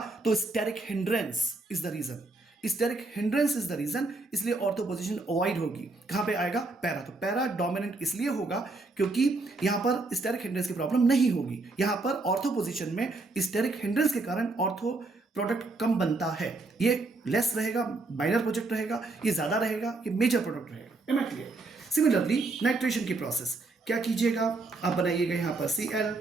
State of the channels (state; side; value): quieter; left; 3.3 dB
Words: तो steric hindrance is the reason. Steric hindrance is the reason, इसलिए ऑर्थो पोजीशन अवॉइड होगी। कहां पे आएगा? पैरा। तो पैरा डोमिनेंट इसलिए होगा क्योंकि यहां पर स्टेरिक हिंड्रेंस की प्रॉब्लम नहीं होगी। यहां पर ऑर्थो पोजीशन में स्टेरिक हिंड्रेंस के कारण ऑर्थो प्रोडक्ट कम बनता है। ये लेस रहेगा, माइनर प्रोजेक्ट रहेगा, ये ज्यादा रहेगा, ये मेजर प्रोडक्ट रहेगा। Am I clear? Similarly nitration की प्रोसेस क्या कीजिएगा, आप बनाइएगा यहाँ पर Cl,